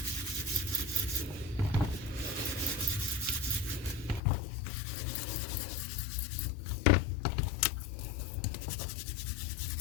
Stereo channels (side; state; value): right; drops out; at 4.2 s